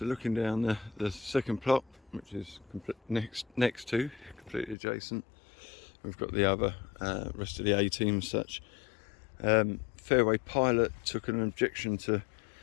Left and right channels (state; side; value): drops out; right; at 4.8 s